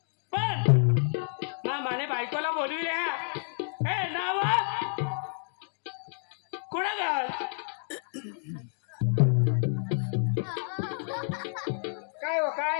पण माने बायकोला बोलविले हे नाव कुठं गा काय हो काय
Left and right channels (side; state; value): right; silent; 58 dB below the other